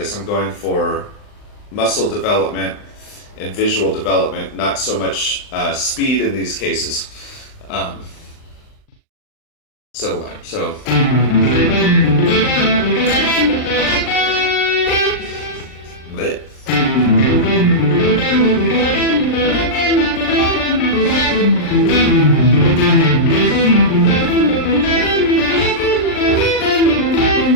I'm going for muscle development and visual development, not so much speed in these cases. Um, so. Bleh.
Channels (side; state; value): right; late; 39 ms